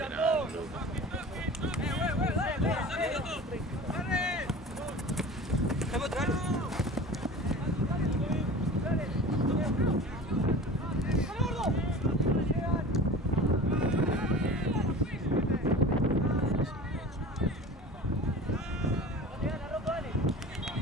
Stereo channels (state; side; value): normal; both; correlation 0.37